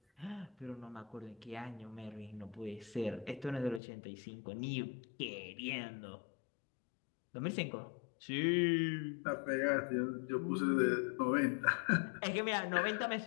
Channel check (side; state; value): right; drops out; at 3.8 s